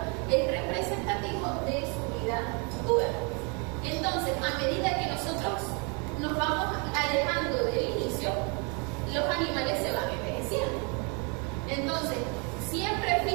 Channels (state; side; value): quieter; left; 33.8 dB